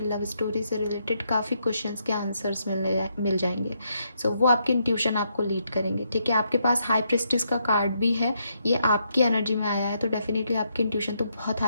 लव स्टोरी से रिलेटेड काफ़ी क्वेश्चंस के आंसर्स मिल जाएंगे। सो वो आपकी इंट्यूशन आपको लीड करेंगे, ठीक है। आपके पास हाई प्रेस्टिस का कार्ड भी है, ये आपकी एनर्जी में आया है, तो डेफिनेटली आपकी इंट्यूशन तो बहुत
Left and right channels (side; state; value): both; inverted; correlation -0.77